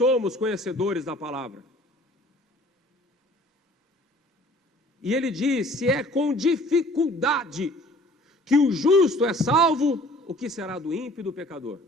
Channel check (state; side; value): normal; both; correlation 0.52